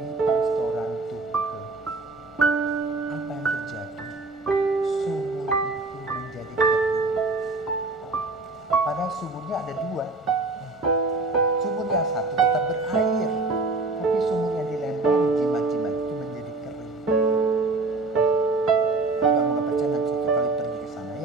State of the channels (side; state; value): left; quieter; 3.4 dB